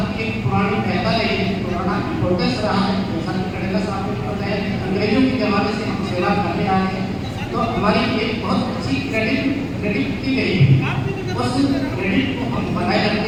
एक पुरानी प्रथा रही है, पुराना इम्पोर्टेंस रहा है। जैसा कि कड़ेला साहब ने बताया कि अंग्रेजों के ज़माने से हम सेवा करने आए हैं, तो हमारी एक बहुत अच्छी क्रेडिट की गई है। उस क्रेडिट को हम बनाए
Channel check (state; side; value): identical; both; correlation 1.00